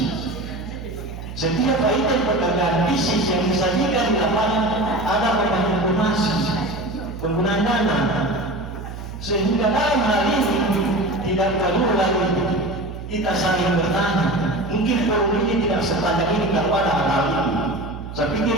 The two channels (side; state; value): right; noise; hum, 10 dB below the sound